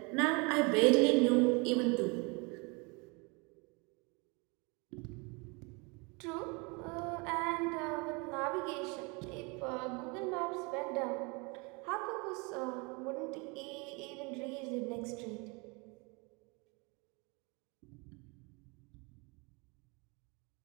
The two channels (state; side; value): quieter; left; 29.6 dB